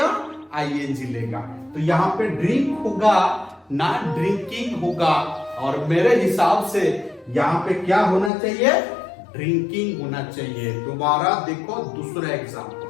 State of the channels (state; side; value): drops out; right; at 8.3 s